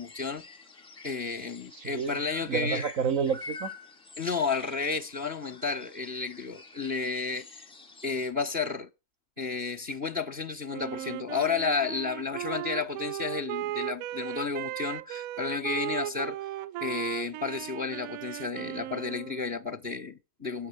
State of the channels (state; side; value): late; left; 2.9 ms